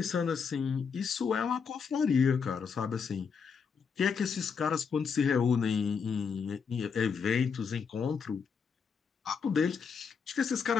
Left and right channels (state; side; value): quieter; right; 6.1 dB